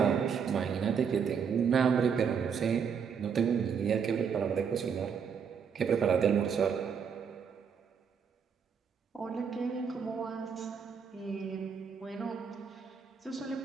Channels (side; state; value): left; quieter; 6.7 dB